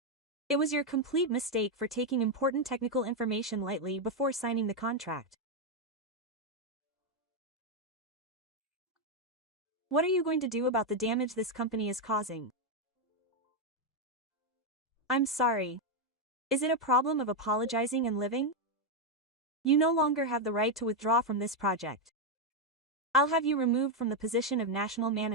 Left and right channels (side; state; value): both; normal; correlation 0.03